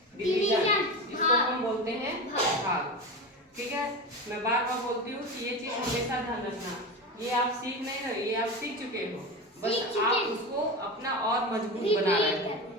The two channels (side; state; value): both; normal; correlation 0.24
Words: डिवीजन, जिसको हम बोलते हैं भाग। ठीक है, मैं बार बार बोलती हूँ कि ये चीज हमेशा ध्यान रखना। ये आप सीख नहीं रहे, ये आप सीख चुके हो, बस आप उसको अपना और मजबूत बना रहे हो,